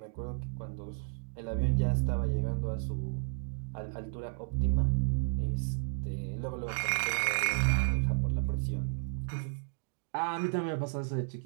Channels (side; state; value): left; silent; digital silence